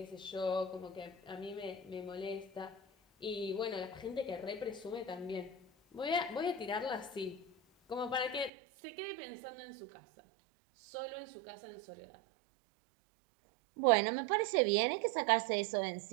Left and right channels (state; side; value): drops out; left; at 8.5 s